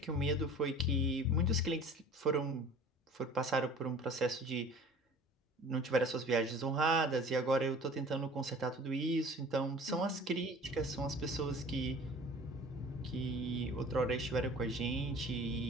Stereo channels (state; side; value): normal; both; correlation 0.45